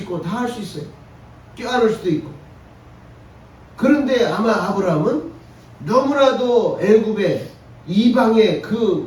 다 할 수 있어요. 껴안을 수도 있고. 그런데 아마 아브라함은 너무나도 애굽의 이방의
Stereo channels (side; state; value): both; identical; correlation 1.00